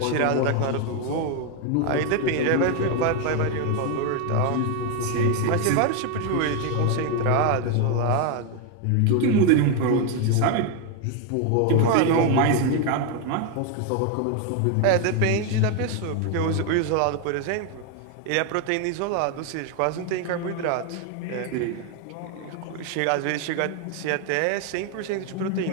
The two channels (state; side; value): different; both; correlation 0.01